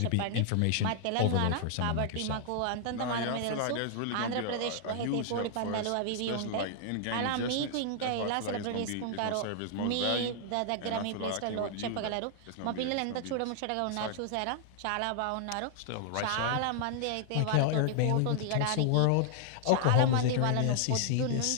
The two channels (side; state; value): both; different; correlation 0.00